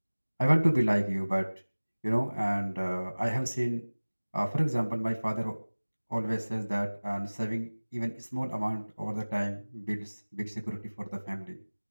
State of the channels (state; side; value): inverted; both; correlation -1.00